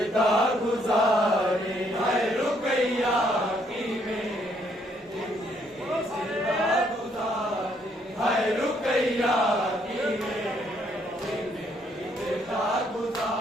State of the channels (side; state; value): both; normal; correlation 0.70